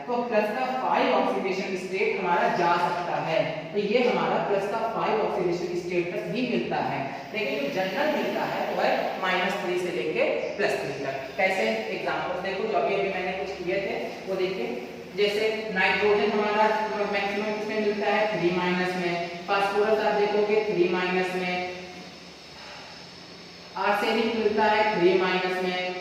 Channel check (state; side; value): identical; both; correlation 1.00